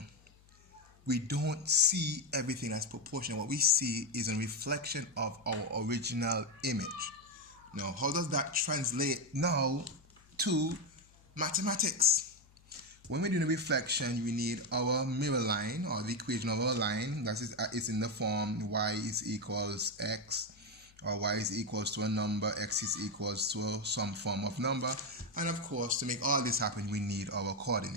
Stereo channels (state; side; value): noise; left; hum, 28 dB below the sound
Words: we don't see everything as proportional. What we see is a reflection of our original image. Now, how does that translate now to mathematics? When we're doing a reflection, we need our mirror line, or the equation of our line. That is, it's in the form y is equals x, or y is equals to a number, x is equals to some form of number. And of course, to make all this happen, we need our